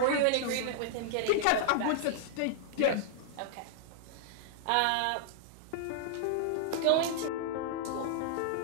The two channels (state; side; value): different; both; correlation -0.01